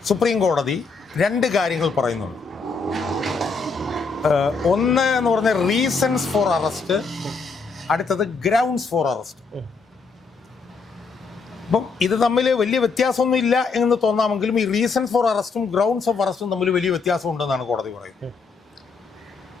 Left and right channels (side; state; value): right; quieter; 4.6 dB